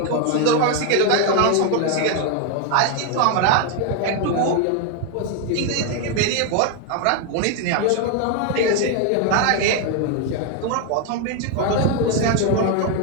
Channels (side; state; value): both; different; correlation 0.01